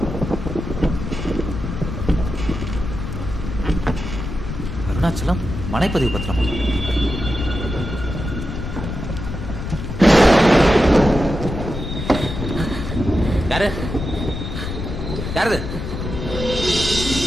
அருணாச்சலம் மனைப்பதிவு பத்திரமா? யாரு யாரு?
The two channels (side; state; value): left; noise; rumble, 6 dB below the sound